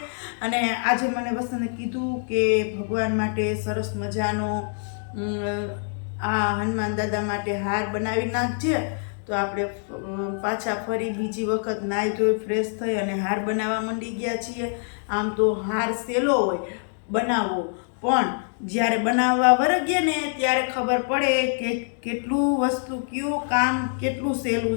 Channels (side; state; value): right; silent; 62 dB below the other